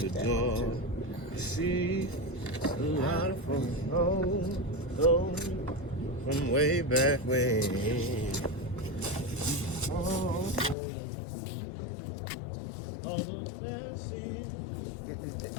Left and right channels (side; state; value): right; drops out; at 10.8 s